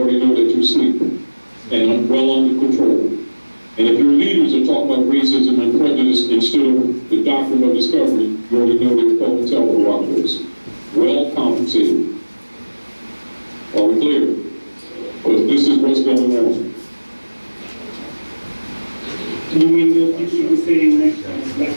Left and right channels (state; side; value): inverted; both; correlation -1.00